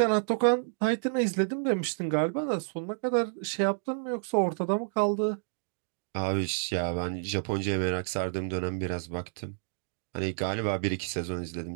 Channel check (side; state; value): left; silent; digital silence